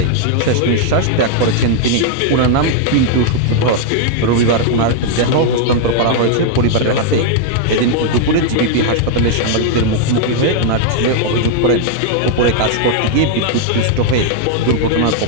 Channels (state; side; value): different; both; correlation 0.00